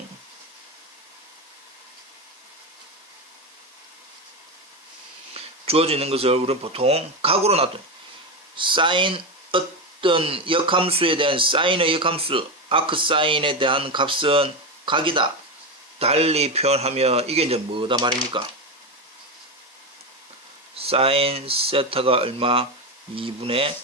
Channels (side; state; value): both; normal; correlation 0.14